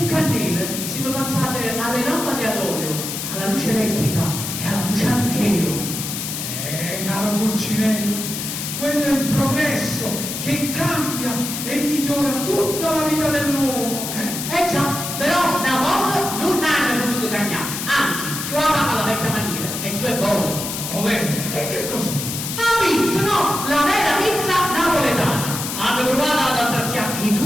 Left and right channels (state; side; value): noise; left; hiss, 5 dB below the sound